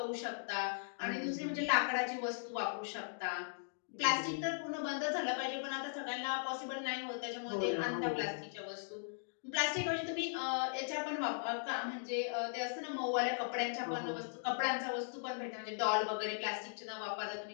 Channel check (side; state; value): right; silent; digital silence